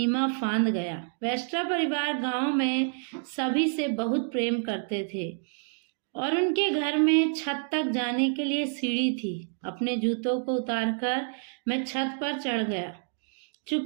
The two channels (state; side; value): silent; left; 59 dB below the other